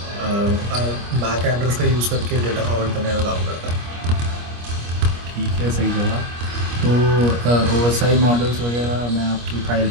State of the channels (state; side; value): late; left; 25 ms